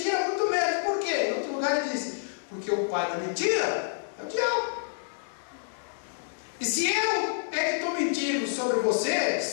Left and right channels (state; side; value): silent; right; 59 dB below the other